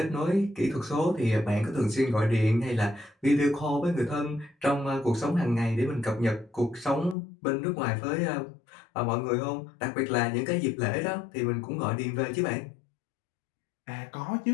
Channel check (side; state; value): right; drops out; at 7.2 s